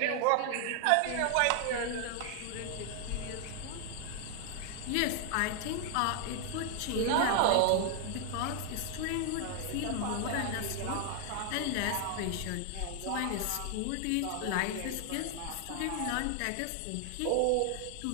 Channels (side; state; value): both; different; correlation 0.00